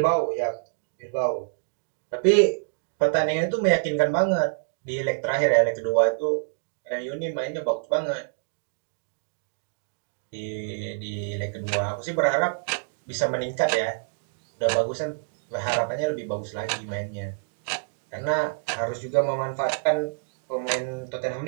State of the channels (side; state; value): left; silent; digital silence